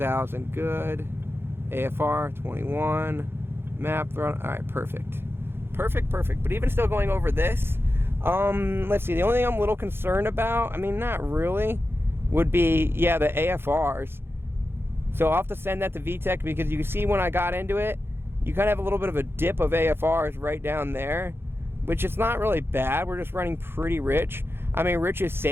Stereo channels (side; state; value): left; late; 0.11 ms